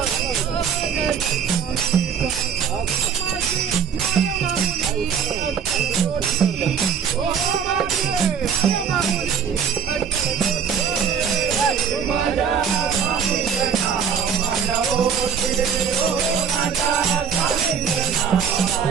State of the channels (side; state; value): left; quieter; 7.2 dB